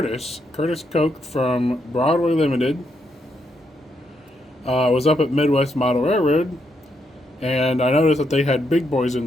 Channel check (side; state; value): both; normal; correlation 0.79